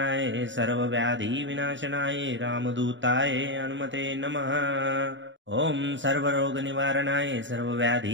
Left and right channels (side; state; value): left; late; 0.54 ms